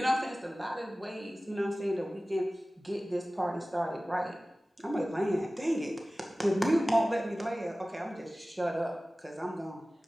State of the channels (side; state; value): both; normal; correlation 0.97